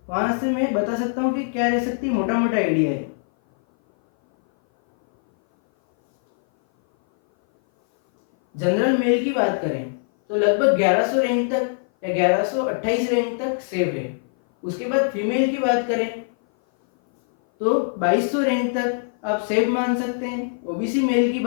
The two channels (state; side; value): silent; right; 58 dB below the other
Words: वहां से मैं बता सकता हूँ कि क्या रह सकती है। मोटा आइडिया है। जनरल मेल की बात करें तो लगभग 1100 रैंक तक या 1128 रैंक तक सेफ है। उसके बाद फीमेल की बात करें तो 2200 रैंक तक आप सेफ मान सकते हैं। OBC मेल की